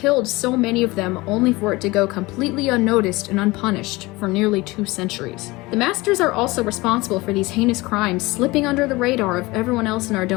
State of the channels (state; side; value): quieter; right; 21.9 dB